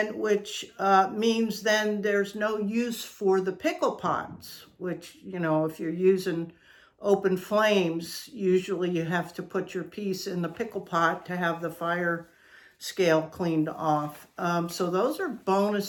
which means then there's no use for the pickle pots, which, if you're using open flames, usually you have to put your piece in the pickle pot to have the fire scale cleaned off. So those are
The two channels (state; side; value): identical; both; correlation 1.00